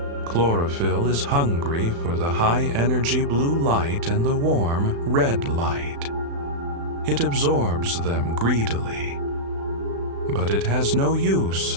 Chlorophyll is hungry for the high-energy blue light and the warm red light. it absorbs them greedily. But it has no use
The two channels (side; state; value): left; late; 35 ms